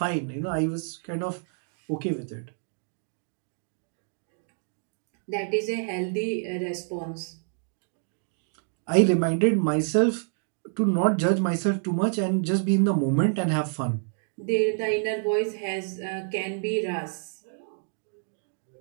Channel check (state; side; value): silent; left; 59 dB below the other